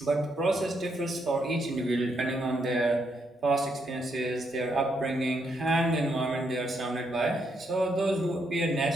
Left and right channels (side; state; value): both; normal; correlation 0.77